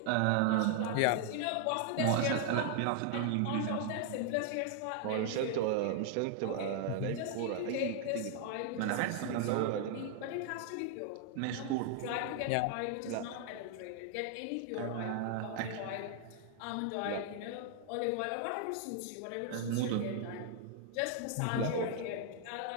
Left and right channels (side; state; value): both; different; correlation 0.00